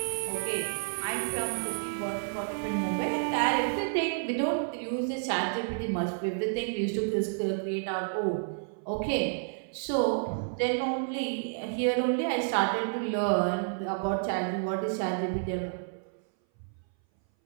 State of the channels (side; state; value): left; silent; 58 dB below the other